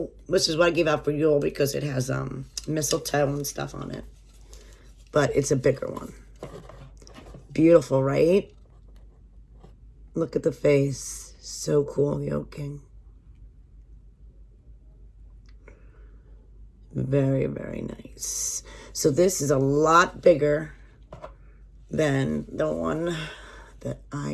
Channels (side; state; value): both; identical; correlation 1.00